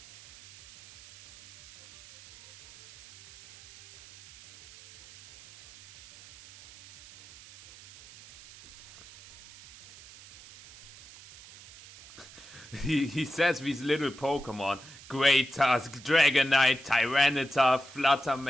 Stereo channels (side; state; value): right; noise; hiss, 21 dB below the sound